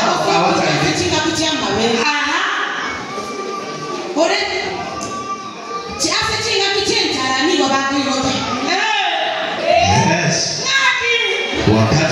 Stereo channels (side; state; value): both; identical; correlation 1.00